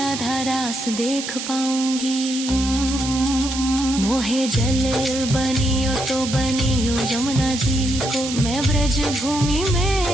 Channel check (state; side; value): noise; right; hiss, 7 dB below the sound